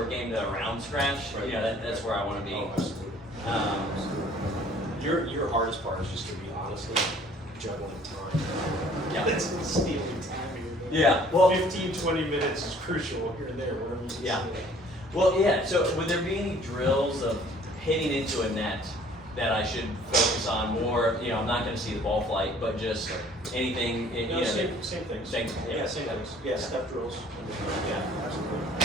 game to around scratch, that's where I want to be. Oh, absolutely. Your hardest part is just gonna be honestly juggling time. Yeah. That's stealing time here. Yeah. Well, 15, 20 minutes is crucial here and there, whatever you can Yeah. say. Well, yeah. So, would there be any drills of hitting into a net that I should focus on more? I'm not going to see the ball flight, but just anything. No, same things. Same- Yeah, same things. Yeah, step drills. Yeah,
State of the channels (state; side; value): normal; both; correlation 0.55